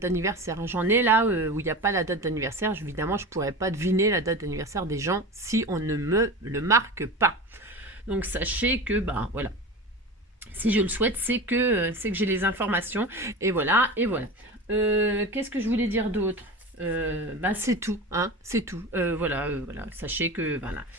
J'en ai là où il n'y a pas la date d'anniversaire. Évidemment, je pourrais pas deviner la date d'anniversaire des gens si on ne me le marque pas. Donc sachez que voilà, si je le souhaite, c'est que j'ai les informations, et voilà. Qu'est-ce que je voulais dire d'autre? C'est tout, hein, c'est tout. Voilà, sachez que voilà,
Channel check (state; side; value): normal; both; correlation 0.29